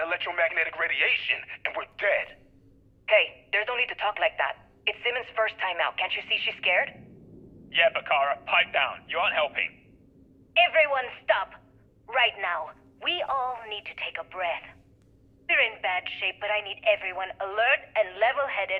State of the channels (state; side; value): identical; both; correlation 1.00